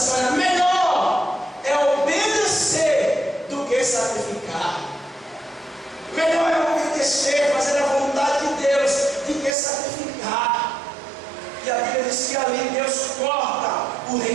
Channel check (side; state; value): left; drops out; at 9.6 s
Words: olha, melhor é obedecer do que sacrificar. Melhor é obedecer, fazer a vontade de Deus, do que sacrificar. E a Bíblia diz que ali Deus corta o